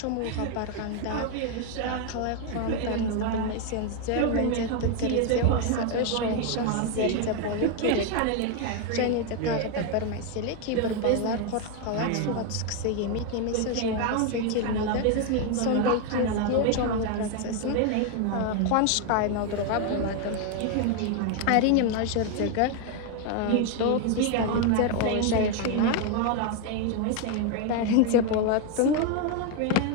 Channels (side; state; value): both; different; correlation 0.01